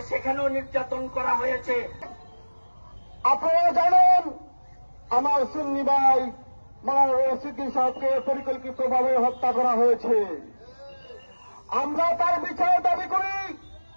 সেখানেও নির্যাতন করা হয়েছে। আপনারা জানেন আমার সুন্নি ভাই মাওলানা রইস উদ্দিন সাহেবকে পরিকল্পিতভাবে হত্যা করা হয়েছে। আমরা তার বিচার দাবি করি,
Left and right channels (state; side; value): inverted; both; correlation -1.00